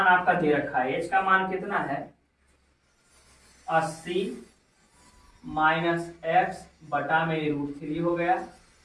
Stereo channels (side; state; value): both; identical; correlation 1.00